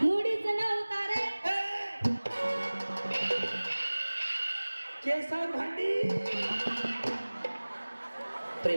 मुडीचं नव्हता रे. केसा भांडी.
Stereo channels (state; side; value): inverted; both; correlation -1.00